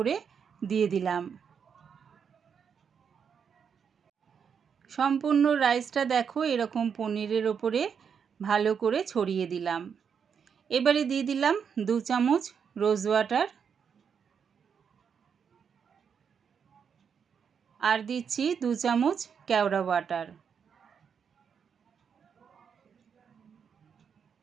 দিয়ে দিলাম। সম্পূর্ণ রাইসটা দেখো এরকম পনিরের ওপরে ভালো করে ছড়িয়ে দিলাম। এবারে দিয়ে দিলাম 2 চামচ রোজ ওয়াটার আর দিচ্ছি 2 চামচ কেওড়া ওয়াটার।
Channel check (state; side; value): quieter; left; 6.9 dB